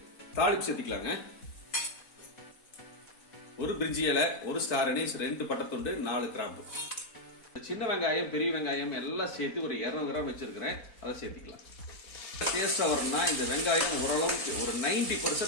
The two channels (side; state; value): right; late; 4.5 ms